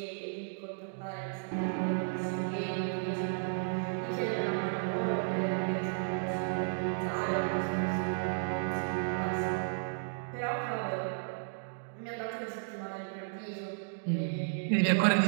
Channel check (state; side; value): silent; left; digital silence